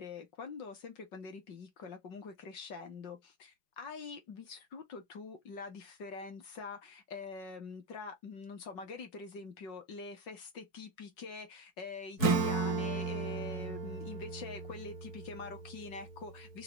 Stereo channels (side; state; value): right; late; 5.5 ms